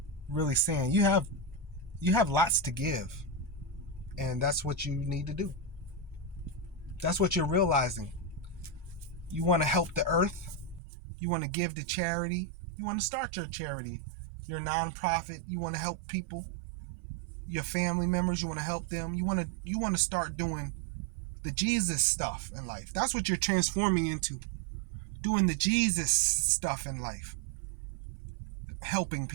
saying. You have lots to give, and that's what you need to do. That's what you're realizing. You want to help the earth. You want to give to charity. You want to start your charity, your nonprofit. You want to help people, your family members. You want to help them. You want to start doing the Jesus stuff in life. That's what you're transforming into. Doing the Jesus stuff in life. Helping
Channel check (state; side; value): drops out; left; at 10.8 s